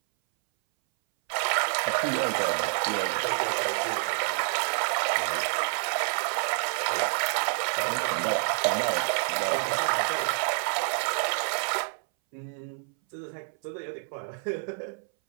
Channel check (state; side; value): silent; left; 59 dB below the other